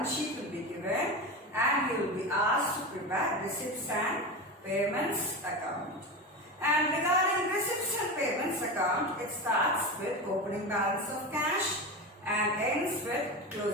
sheet will be given and you will be asked to prepare receipts and payments account. And regarding receipts and payments account, it starts with opening balance of cash and ends with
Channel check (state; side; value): normal; both; correlation 0.22